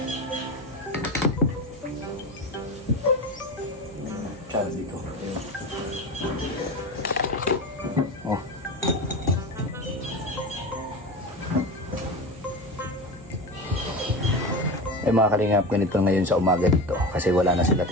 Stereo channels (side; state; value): right; noise; hum, 21 dB below the sound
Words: Sabi ko. Oh. Eh mga kalingap, ganito ngayon sa umaga dito. Kasi wala na sila